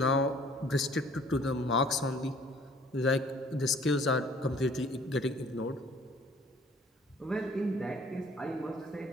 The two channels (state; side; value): normal; both; correlation 0.55